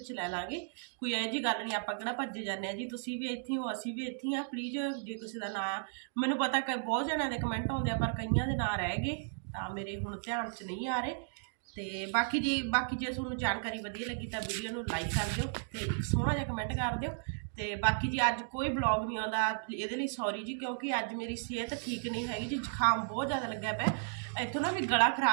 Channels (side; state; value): left; silent; digital silence